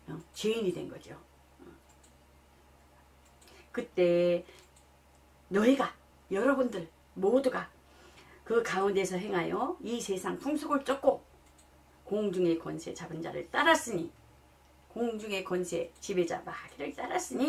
죄인이 된 거죠. 그때 너희가 여러분들 모두가 그 가운데서 행하여 이 세상 풍속을 쫓고 공중의 권세 잡은 자를 따랐으니 공중의 권세 지배자 마귀를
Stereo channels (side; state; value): both; identical; correlation 1.00